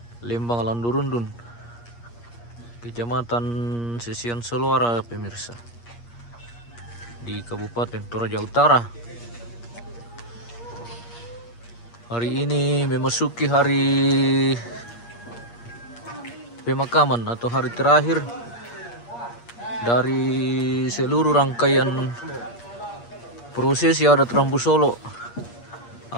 Lembang Landurundun, Kecamatan Sesian Soluara, pemirsa, di Kabupaten Toraja Utara. Hari ini memasuki hari pemakaman atau hari terakhir dari seluruh rangkaian prosesi adat Rambu Solo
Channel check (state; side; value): late; right; 8.5 ms